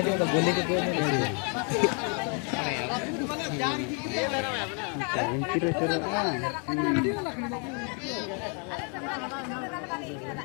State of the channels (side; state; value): right; quieter; 38.3 dB